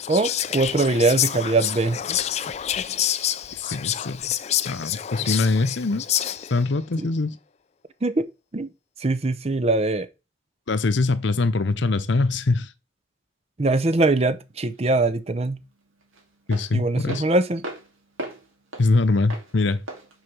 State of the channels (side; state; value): both; normal; correlation 0.51